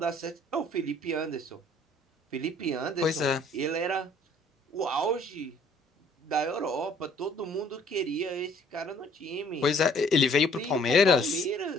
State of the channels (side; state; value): both; normal; correlation 0.58